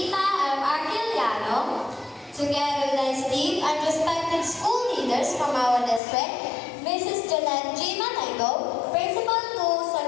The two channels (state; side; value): drops out; right; at 6.0 s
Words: M. Arquiliano, together with his team and respected school leaders from our district, Mrs. Jeanette G. Manego, Principal to San